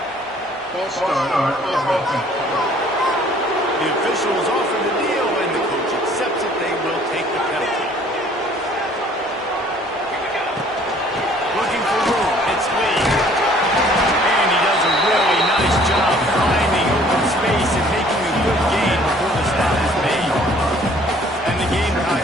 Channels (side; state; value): both; normal; correlation 0.56